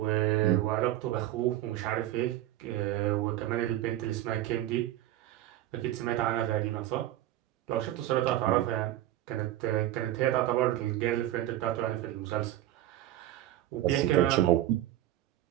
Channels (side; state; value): left; quieter; 13.7 dB